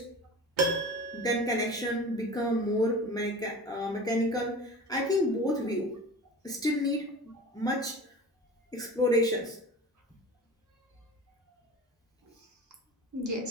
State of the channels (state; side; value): normal; both; correlation 0.36